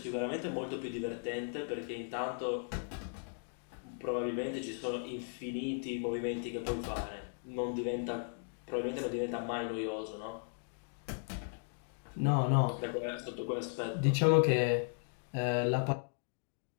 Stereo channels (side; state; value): right; silent; digital silence